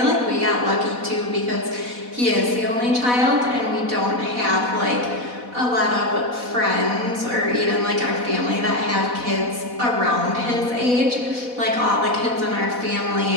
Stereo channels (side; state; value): left; late; 4.1 ms